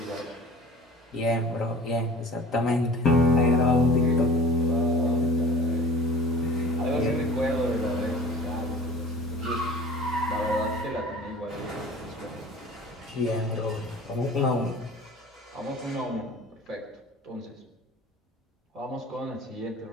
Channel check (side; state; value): both; normal; correlation 0.42